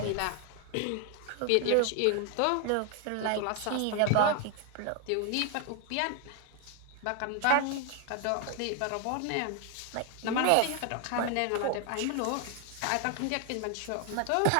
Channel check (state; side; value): different; both; correlation 0.01